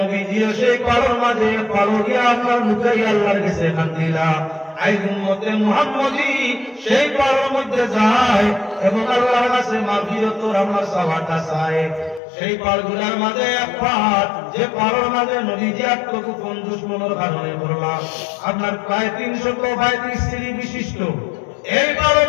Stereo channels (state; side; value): drops out; right; at 12.2 s